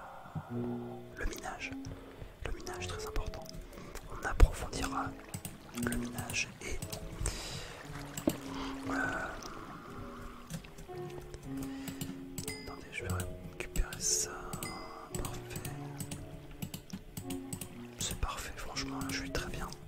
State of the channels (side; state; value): both; identical; correlation 1.00